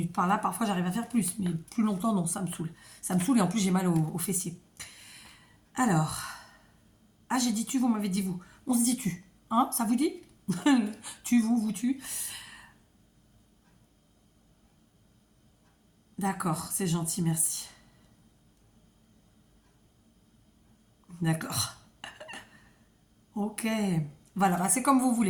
par-là. Parfois, j'arrive à faire plus, mais plus longtemps, non, ça me saoule. Ça me saoule et en plus, j'ai mal aux fessiers. Alors. Ah, j'ai dit tu, vous m'avez dit vous. On se dit tu. Hein, ça vous dit? Tu, vous, tu. D'accord, c'est gentil, merci. D'accord. Ok. Voilà, bah, c'est comme vous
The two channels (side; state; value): both; identical; correlation 1.00